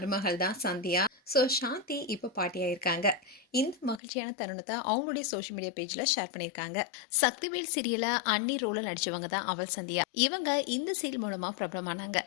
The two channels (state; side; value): drops out; right; at 4.0 s